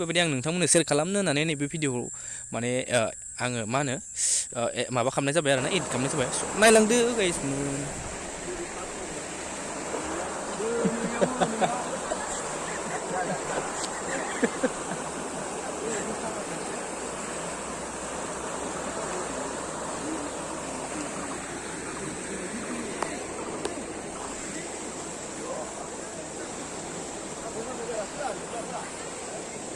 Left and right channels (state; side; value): identical; both; correlation 1.00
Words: आं नोंथांमोननो सेयार खालामनो होननानै नैबे भिडिअखौ माने आङो मा होनो माबा खालामनाय जाबाय आरो ना, एडिट खालामनाय जाबाय। नायलांदो गाइस।